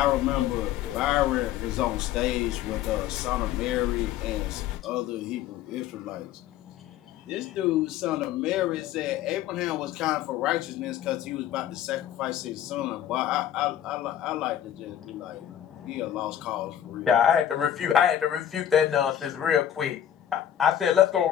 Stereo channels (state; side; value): quieter; right; 10.7 dB